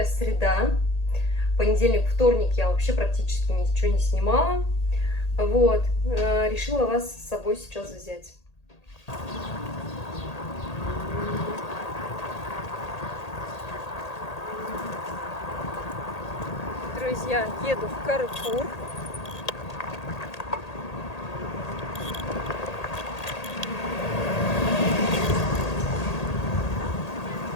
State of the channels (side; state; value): right; late; 1.8 ms